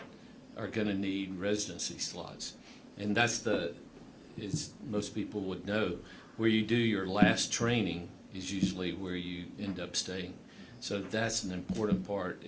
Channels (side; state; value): both; identical; correlation 1.00